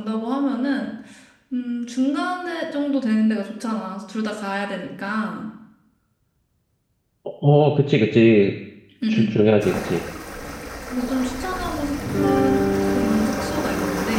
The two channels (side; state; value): both; identical; correlation 1.00